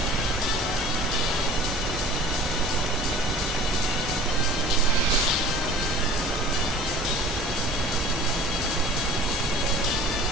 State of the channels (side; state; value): both; normal; correlation 0.45